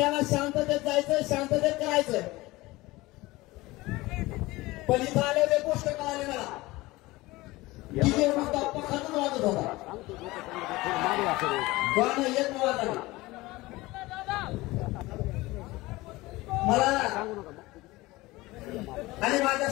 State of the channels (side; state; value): right; quieter; 20.2 dB